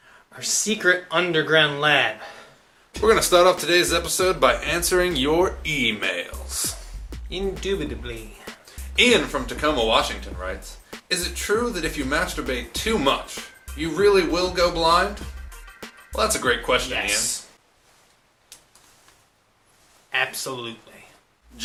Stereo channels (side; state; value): both; identical; correlation 1.00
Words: our secret underground lab. We're going to start off today's episode by answering your emails. Indubitably. Ian from Tacoma, Washington writes, is it true that if you masturbate too much, you really will go blind? Well, that's a great question, Yes. Absolutely. Ian.